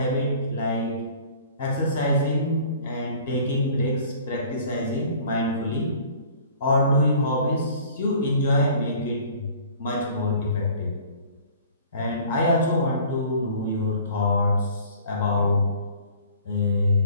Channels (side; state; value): both; inverted; correlation -0.50